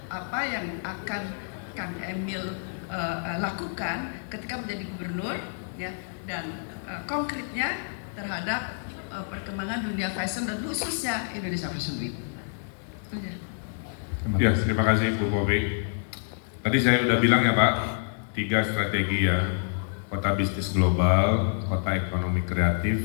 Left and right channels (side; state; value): right; silent; digital silence